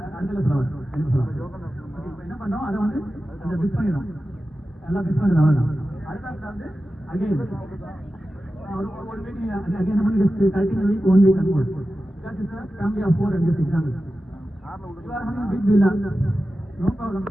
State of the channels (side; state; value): both; normal; correlation 0.93